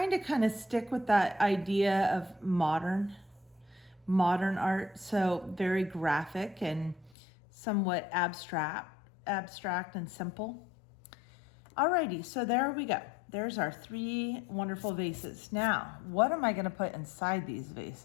to kind of stick with that idea of modern art, so very graphic and somewhat abstract and simple. Alrighty, so there we go. There's our 3 wonderful vases. Now, what am I gonna put inside these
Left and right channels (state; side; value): drops out; right; at 7.1 s